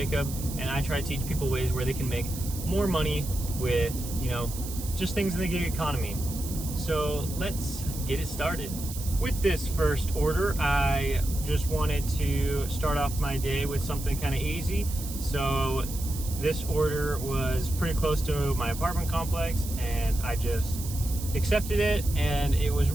and I try to teach people ways where they can make more money with, just things in the gig economy. So let's get it started. With this first order, I just wanted to start off my day with something kind of easy. So this order was pretty close to my apartment complex, and I just accepted it, and it was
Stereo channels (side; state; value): right; noise; hiss, 11 dB below the sound